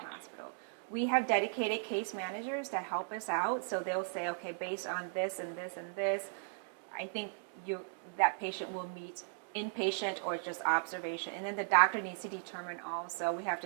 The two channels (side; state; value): left; silent; digital silence